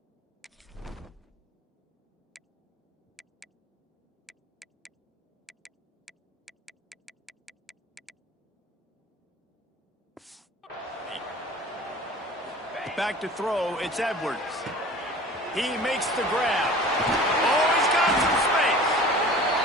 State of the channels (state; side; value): normal; both; correlation 0.42